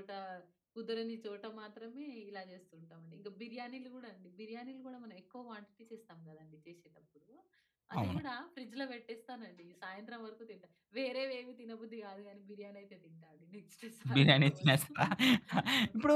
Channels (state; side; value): identical; both; correlation 1.00